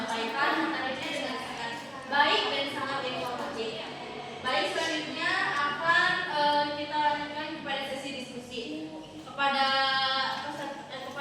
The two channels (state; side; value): identical; both; correlation 1.00